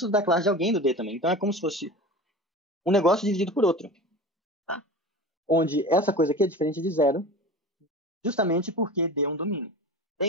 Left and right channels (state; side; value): normal; both; correlation 0.34